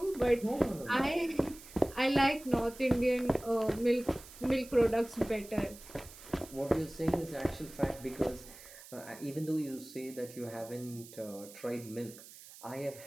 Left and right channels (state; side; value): noise; right; hiss, 18 dB below the sound